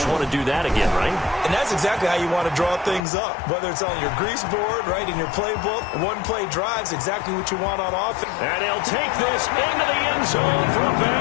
want to do that again, right? And that's exactly how you want to draw things up. Whether it's on your grease board, right, in your playbook, one play drive's exactly what you want on offense. And he'll take this into the end zone for a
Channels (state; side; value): drops out; right; at 3.0 s